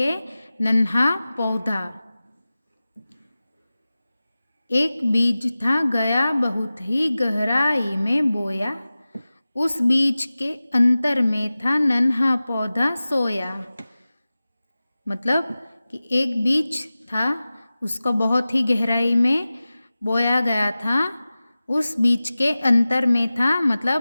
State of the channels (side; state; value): both; inverted; correlation -0.96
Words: नन्हा पौधा। एक बीज था गया बहुत ही गहराई में बोया, उस बीज के अंतर में था नन्हा पौधा सोया। मतलब कि एक बीज था, उसको बहुत ही गहराई में बोया गया था। उस बीज के अंतर में था,